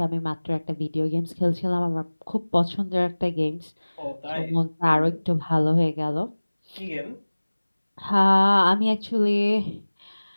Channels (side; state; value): both; inverted; correlation -1.00